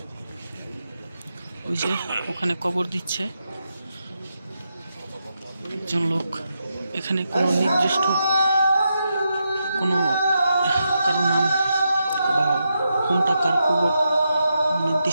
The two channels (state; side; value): inverted; both; correlation -0.85